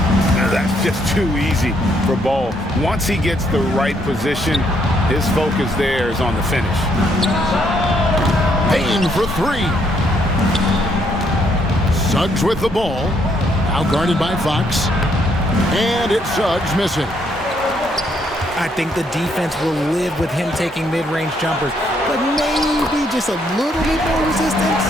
Now that just too easy for Ball. Once he gets the right position, his focus there is on the finish. Payne for three. Suggs with the ball. Now guarded by Fox. And it's Suggs missing. I think the defense will live with him taking mid-range jumpers, but maybe just a little bit more resistance.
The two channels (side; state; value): both; normal; correlation 0.71